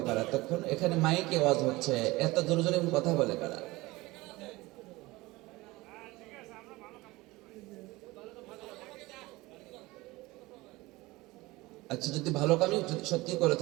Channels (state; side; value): quieter; left; 20.7 dB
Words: কারা? তখন এখানে মাইকে আওয়াজ হচ্ছে, এত জোরে জোরে কথা বলে কারা? আচ্ছা, যদি ভালো কামই সত্যি করে